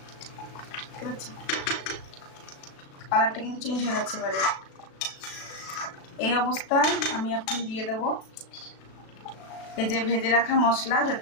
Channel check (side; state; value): right; late; 36 ms